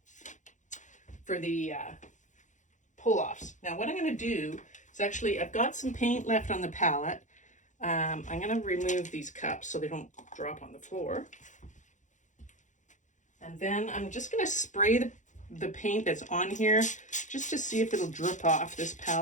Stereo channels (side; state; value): right; late; 0.36 ms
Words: pull-offs. Now what I'm going to do is, actually, I've got some paint left on the palette. I'm going to remove these cups so they don't drop on the floor. And then I'm just going to spray the paint that's on here just to see if it'll drip off this